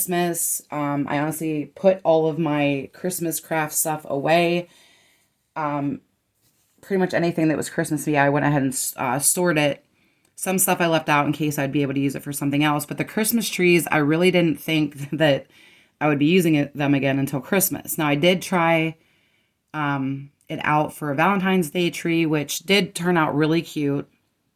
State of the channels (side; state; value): both; identical; correlation 1.00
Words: I honestly put all of my Christmas craft stuff away. Pretty much anything that was Christmassy, I went ahead and stored it. Some stuff I left out in case I'd be able to use it for something else. But the Christmas trees, I really didn't think that I would be using them again until Christmas. Now, I did try it out for a Valentine's Day tree, which did turn out really cute.